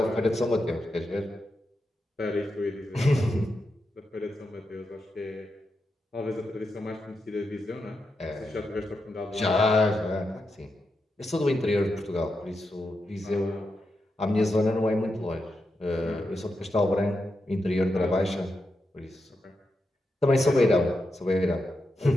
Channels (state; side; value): normal; both; correlation 0.86